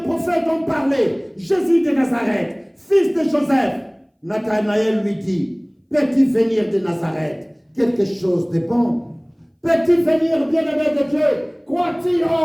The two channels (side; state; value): both; identical; correlation 1.00